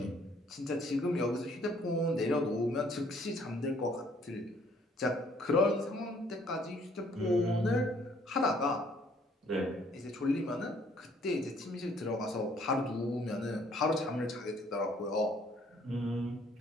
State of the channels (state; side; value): normal; both; correlation 0.62